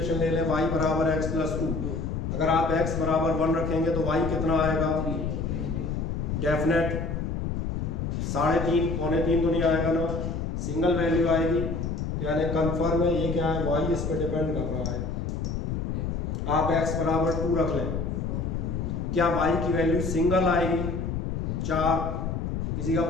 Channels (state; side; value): noise; left; rumble, 2 dB below the sound